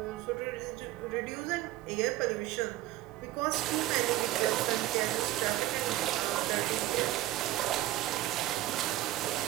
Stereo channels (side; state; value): left; quieter; 15.9 dB